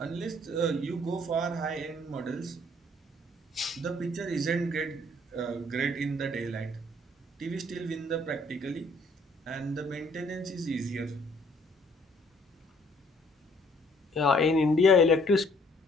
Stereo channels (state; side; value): normal; both; correlation 0.61